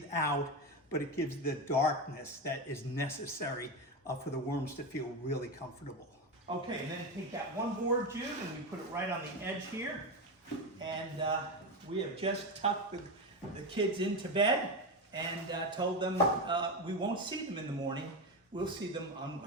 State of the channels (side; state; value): both; normal; correlation 0.15